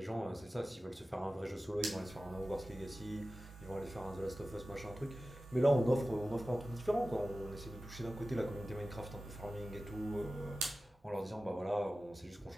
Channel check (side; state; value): both; normal; correlation 0.95